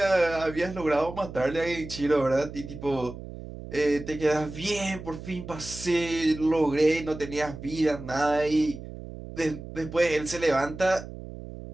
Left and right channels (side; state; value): right; noise; hum, 12 dB below the sound